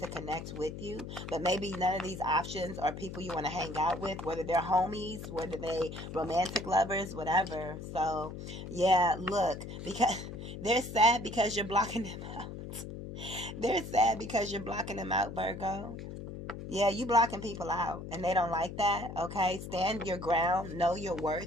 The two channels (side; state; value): left; noise; hum, 9 dB below the sound